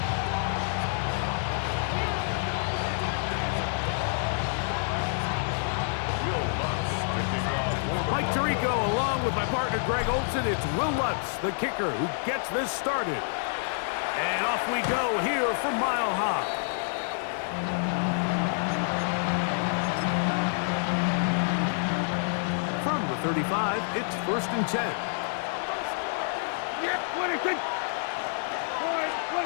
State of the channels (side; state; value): right; silent; 59 dB below the other